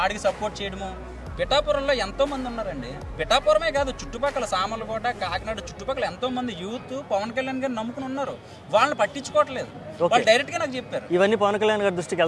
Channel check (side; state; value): both; identical; correlation 1.00